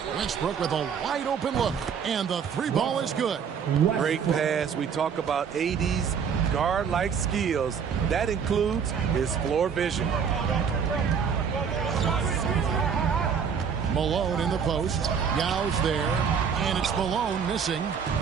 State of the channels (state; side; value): quieter; left; 6.9 dB